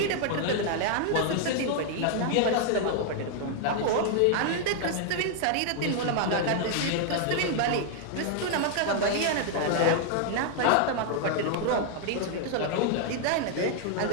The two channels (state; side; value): different; both; correlation 0.00